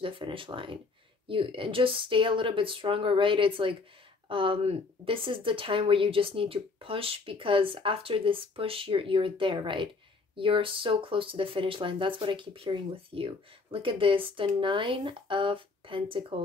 the finish line. You and just stay a little bit stronger, right? It's like this is the time where you just need to push, because after this push you're there, right? You're so close to the finish line. That's what I keep hearing with you. Look at this, the 9 of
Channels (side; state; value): right; quieter; 4.1 dB